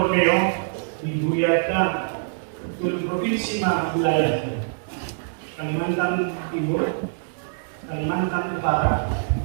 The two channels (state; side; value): silent; left; digital silence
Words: di Ruyata, tulad provinsi mga wilayah. Kalimantan Timur, Kalimantan Utara,